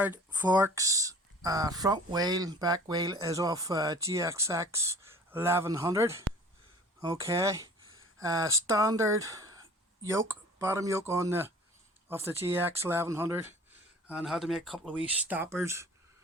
forks, front wheel, back wheel is off GXX 1100. Okay. Standard yoke, bottom yoke on the of the GX 1100, and had to make a couple of wee stoppers,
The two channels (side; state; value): both; normal; correlation 0.47